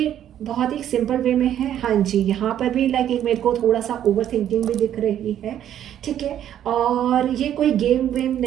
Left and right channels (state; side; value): quieter; left; 10.7 dB